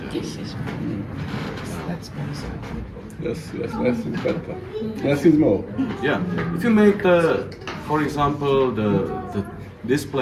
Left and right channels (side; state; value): both; identical; correlation 1.00